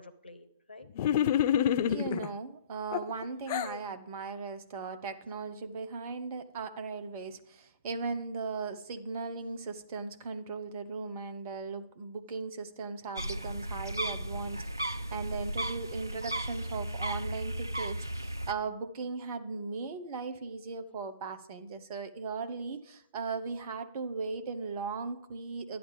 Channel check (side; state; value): both; inverted; correlation -0.55